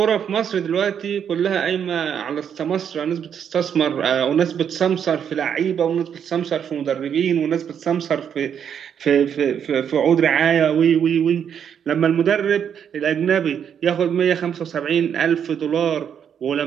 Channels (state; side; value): quieter; left; 8.2 dB